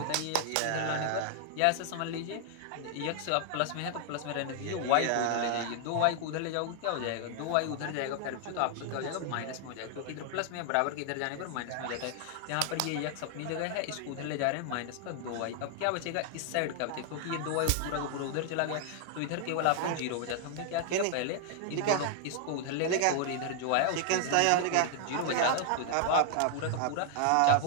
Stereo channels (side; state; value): both; different; correlation 0.00